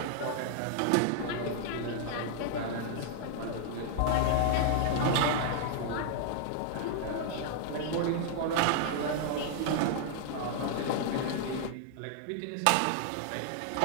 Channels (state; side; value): different; both; correlation -0.01